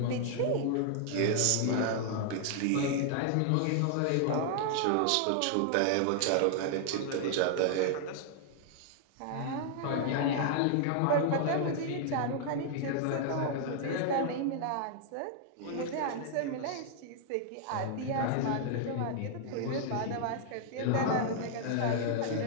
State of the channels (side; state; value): both; different; correlation -0.01